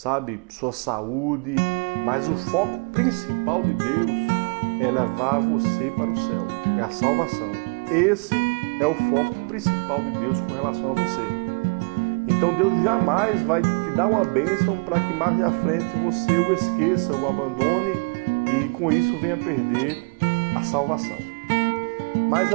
sua saúde, mas o foco principal de Deus é levar você para o céu, é a salvação. Esse é o foco principal de Deus com relação a você. Então Deus jamais vai te dar uma bênção para que mais à frente você o esqueça, o abandone e com isso venha perder a salvação. Mas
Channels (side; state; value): left; quieter; 33.6 dB